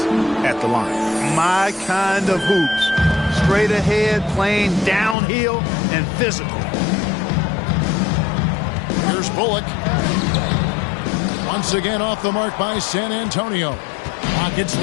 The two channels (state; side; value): drops out; right; at 5.2 s